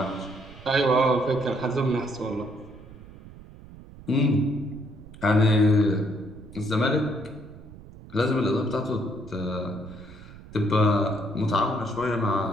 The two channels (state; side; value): noise; right; rumble, 18 dB below the sound